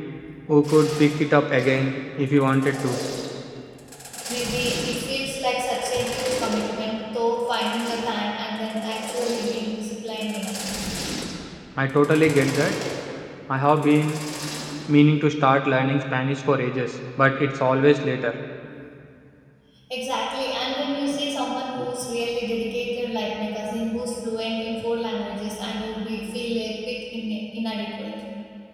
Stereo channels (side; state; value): both; identical; correlation 1.00